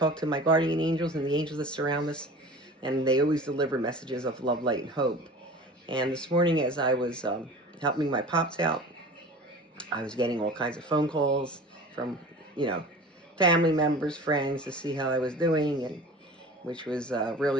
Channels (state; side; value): normal; both; correlation 0.40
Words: to my guardian angels and the angels that surround us, and they always deliver messages of love, light, and hope. And this morning, as I was helping my pops out, I was getting all kinds of phone calls from, you know, family members, friends to see how I was doing, and which was